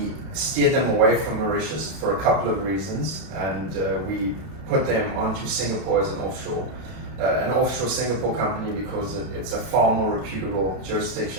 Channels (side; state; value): left; late; 32 ms